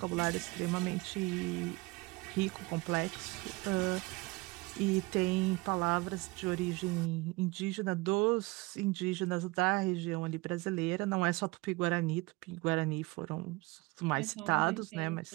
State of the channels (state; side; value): quieter; left; 23.6 dB